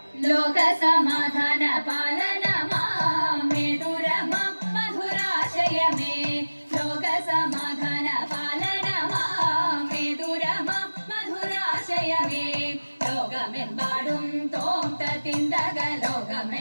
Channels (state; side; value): inverted; both; correlation -1.00